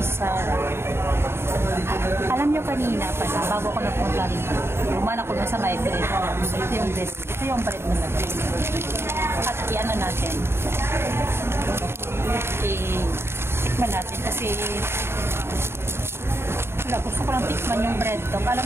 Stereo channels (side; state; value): left; late; 0.12 ms